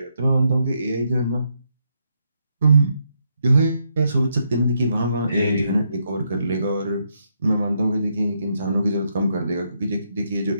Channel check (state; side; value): inverted; both; correlation -0.78